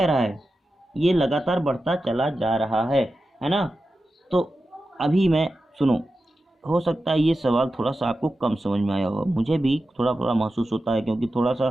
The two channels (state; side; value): normal; both; correlation 0.92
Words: रहा है, ये लगातार बढ़ता चला जा रहा है ना। तो अभी मैं सुनो, हो सकता है ये सवाल थोड़ा सा आपको कम समझ में आया होगा, मुझे भी थोड़ा थोड़ा महसूस होता है, क्योंकि थोड़ा सा